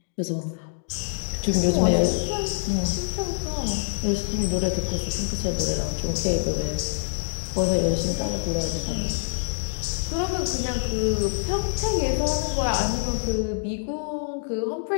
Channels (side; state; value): right; silent; digital silence